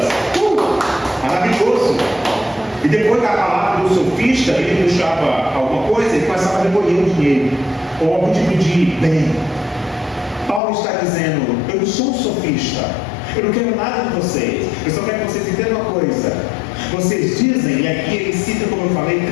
maravilhoso. E depois da palavra do sofista, ele puxava alguma coisa e começava a recolher o dinheiro, ou algum tipo de bem. Paulo está dizendo: eu não sou um sofista, eu não quero nada de vocês, eu só quero que vocês entendam uma coisa. Vocês dizem, e aqui ele cita, como eu falei,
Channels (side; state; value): right; drops out; at 10.6 s